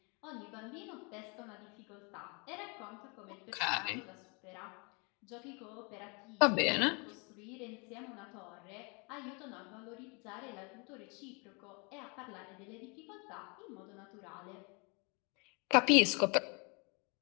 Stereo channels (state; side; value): quieter; right; 32.0 dB